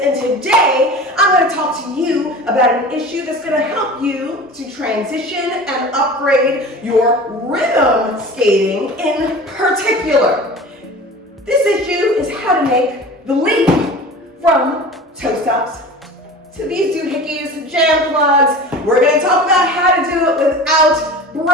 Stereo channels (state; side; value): normal; both; correlation 0.37